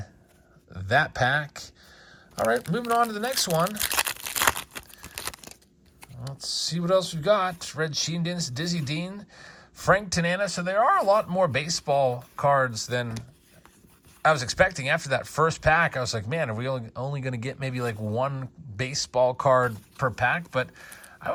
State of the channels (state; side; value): identical; both; correlation 1.00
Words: that pack. All right, moving on to the next one. Let's see what else we've got. Red Sheendins, Dizzy Dean, Frank Tanana. So there are a lot more baseball cards than I was expecting. After that first pack, I was like, man, are we only going to get maybe like one baseball card per pack? But I